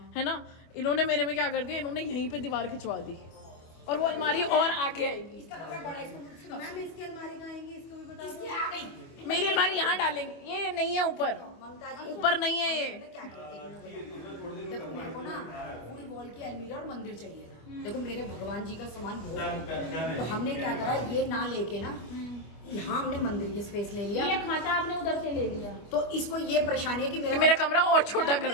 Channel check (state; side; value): late; right; 25 ms